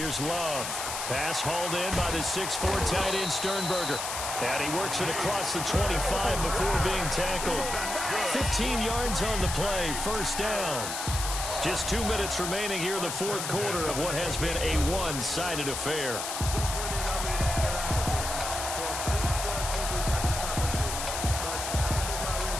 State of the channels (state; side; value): noise; left; hiss, 4 dB below the sound